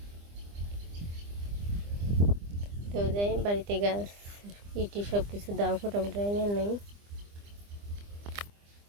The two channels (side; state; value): left; late; 25 ms